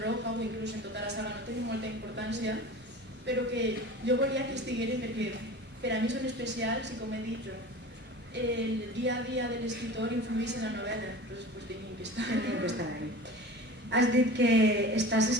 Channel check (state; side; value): normal; both; correlation 0.36